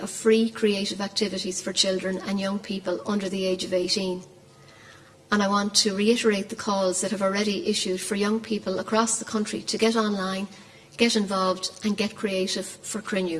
of free creative activities for children and young people under the age of 18. And I want to reiterate the calls that have already issued for young people across the country to get online, get involved and get creative for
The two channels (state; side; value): identical; both; correlation 1.00